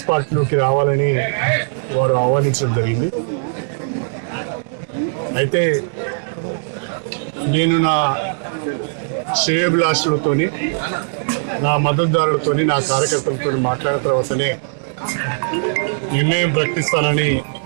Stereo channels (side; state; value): left; silent; digital silence